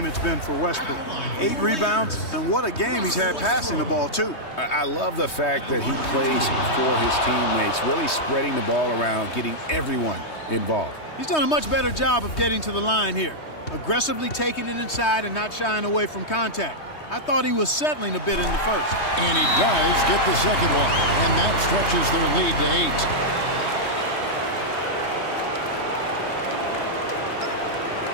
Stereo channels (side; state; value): right; late; 3.2 ms